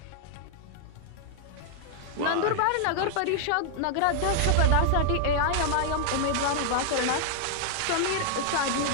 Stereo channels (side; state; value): both; different; correlation 0.00